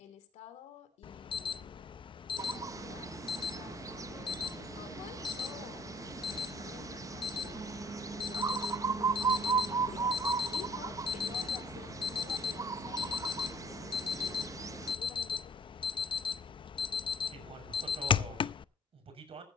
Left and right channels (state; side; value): normal; both; correlation 0.54